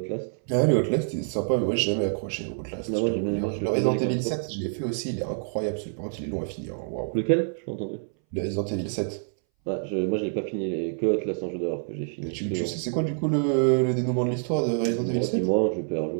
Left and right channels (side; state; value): left; silent; 60 dB below the other